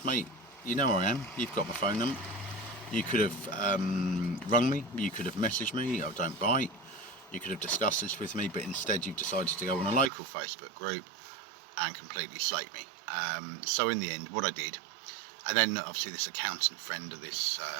mate, you know where I am, you've got my phone number, you could have rung me, you could have messaged me, I don't bite, you could have discussed this with me, but instead you've decided to go on a local Facebook group and completely slate me. So in the end, what I did, and then obviously this accountant friend of this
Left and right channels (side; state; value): left; drops out; at 10.1 s